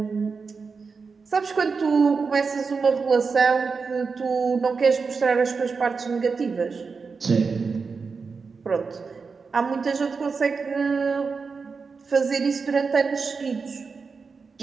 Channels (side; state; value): left; quieter; 4.9 dB